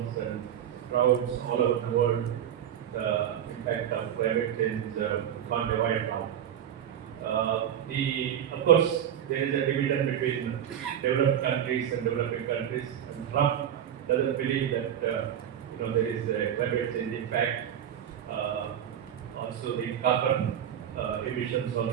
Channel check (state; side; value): quieter; left; 9.9 dB